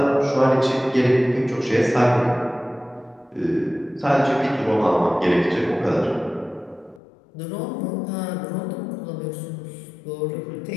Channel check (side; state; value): right; drops out; at 7.0 s